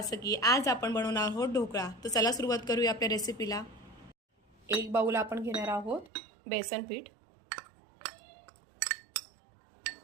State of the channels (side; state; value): left; drops out; at 6.1 s